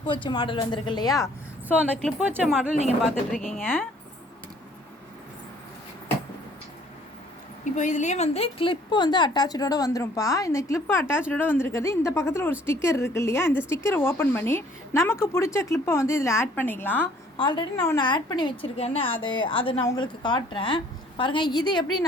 வச்ச மாடல் வந்திருக்கு இல்லையா? ஸோ அந்த கிளிப் வச்ச மாடல் நீங்கள் பார்த்துட்ருக்கீங்க. இப்போ இதுலேயே வந்து கிளிப்பு வந்து அட்டாச்சோடு வந்துடும்ப்பா. இந்த கிளிப்பு அட்டாச்சோடு வந்திருக்கிறது. இந்த பக்கத்தில் ஒரு ஸ்டிக்கர் இருக்குது இல்லையா? இந்த ஸ்டிக்கரை ஓப்பன் பண்ணி நமக்கு பிடிச்ச கிளிப்பை வந்து இதில் ஆட் பண்ணிக்கலாம். ஆல்ரெடி நான் ஒன்று ஆட் பண்ணி வச்சுருக்கேன்னு அதை நான் உங்களுக்கு காட்டுறேன் பாருங்கள். இது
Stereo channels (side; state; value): both; normal; correlation 0.58